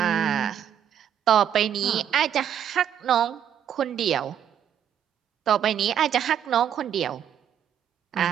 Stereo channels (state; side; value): quieter; left; 9.3 dB